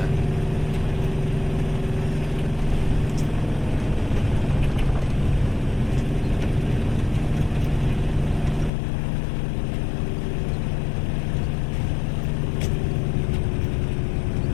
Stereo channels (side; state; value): right; drops out; at 8.7 s